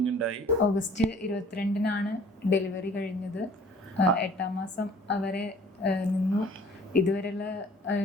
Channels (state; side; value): normal; both; correlation 0.52